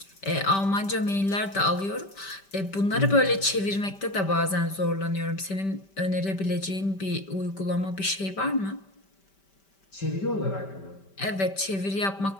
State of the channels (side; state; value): right; late; 5.1 ms